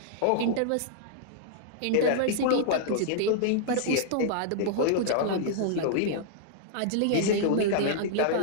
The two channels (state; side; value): different; both; correlation -0.01